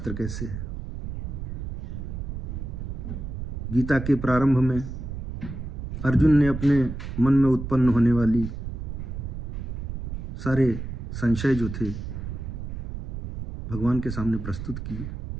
कैसे है। गीता के प्रारंभ में अर्जुन ने अपने मन में उत्पन्न होने वाली सारे संशय जो थे भगवान के सामने प्रस्तुत किए।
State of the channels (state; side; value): noise; right; rumble, 6 dB below the sound